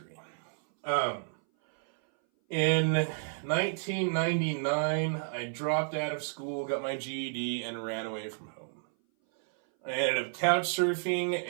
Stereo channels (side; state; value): left; silent; 57 dB below the other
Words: In 1999, I dropped out of school, got my GED, and ran away from home. I ended up couch surfing,